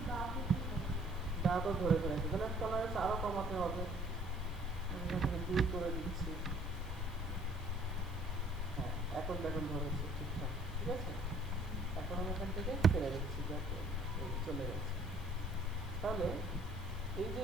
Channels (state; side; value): normal; both; correlation 0.57